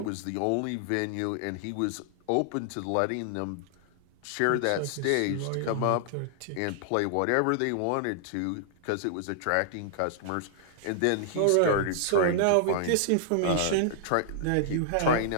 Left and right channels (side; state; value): both; different; correlation -0.01